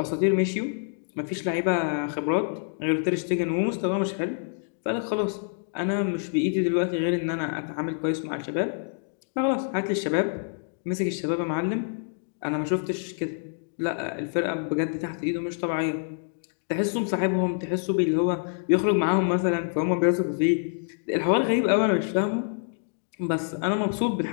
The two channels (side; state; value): right; silent; digital silence